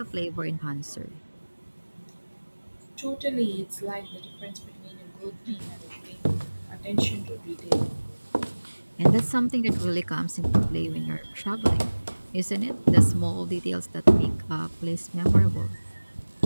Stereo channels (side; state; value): both; inverted; correlation -1.00